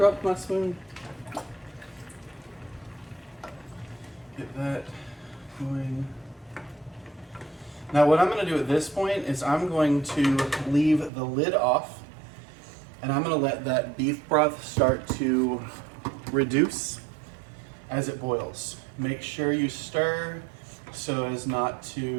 my spoon. Get that going. Now what I'm going to do at this point is I'm going to leave the lid off and I'm going to let that beef broth start to reduce as it boils. Make sure you stir so as not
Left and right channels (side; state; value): left; drops out; at 11.1 s